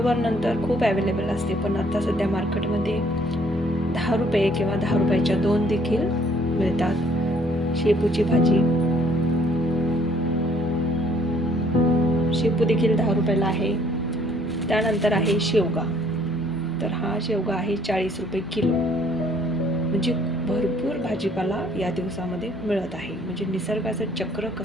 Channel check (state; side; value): normal; both; correlation 0.62